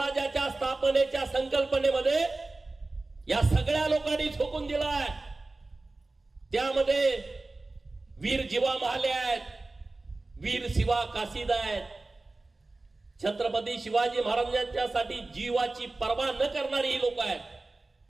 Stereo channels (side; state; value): left; quieter; 3.2 dB